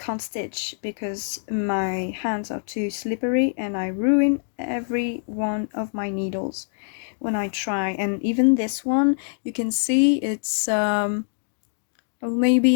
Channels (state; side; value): silent; right; digital silence